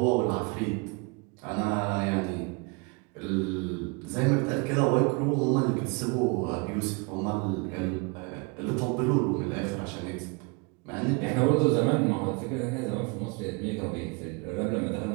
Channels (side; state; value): left; quieter; 30.4 dB